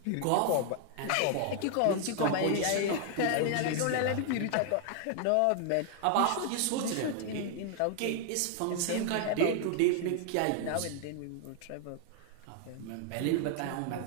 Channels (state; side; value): different; both; correlation 0.00